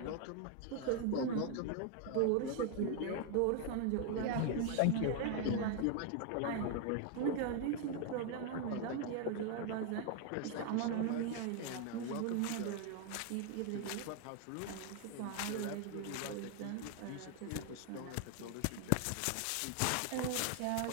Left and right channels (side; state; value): both; different; correlation 0.00